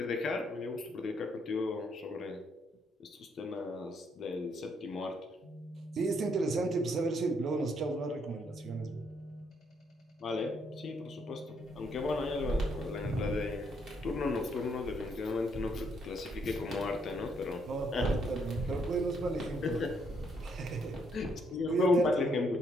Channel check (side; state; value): both; normal; correlation 0.73